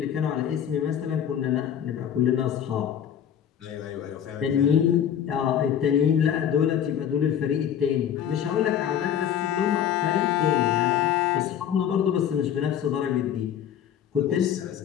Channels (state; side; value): quieter; right; 9.3 dB